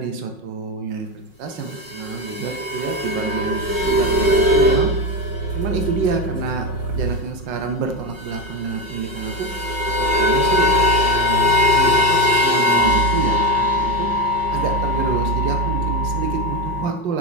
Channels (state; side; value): late; left; 5.5 ms